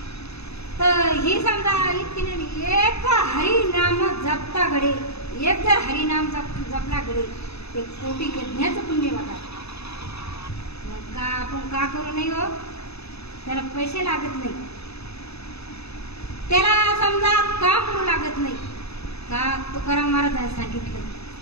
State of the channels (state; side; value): late; right; 0.79 ms